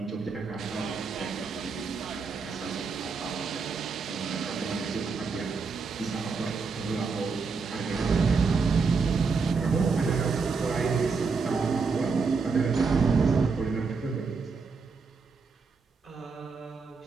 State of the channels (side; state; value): left; quieter; 4.8 dB